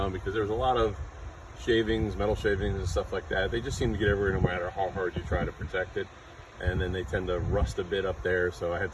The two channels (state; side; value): identical; both; correlation 1.00